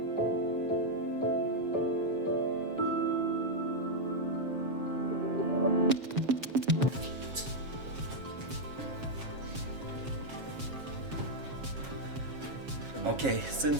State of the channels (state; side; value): late; left; 7.4 ms